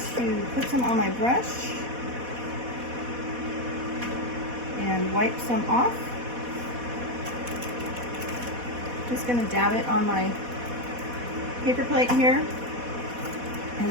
to put some on my brush and wipe some off. Just going to dab it on my paper plate here, and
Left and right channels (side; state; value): left; late; 4.1 ms